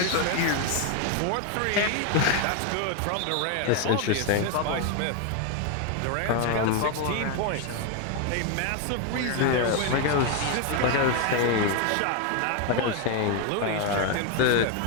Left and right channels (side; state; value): both; different; correlation 0.01